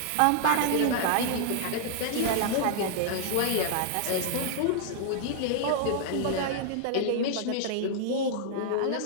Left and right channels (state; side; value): different; both; correlation -0.01